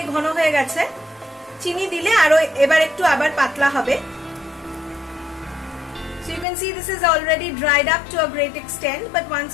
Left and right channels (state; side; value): drops out; right; at 6.5 s